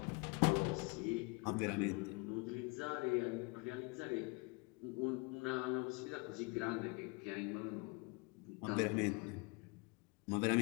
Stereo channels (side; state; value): right; quieter; 28.9 dB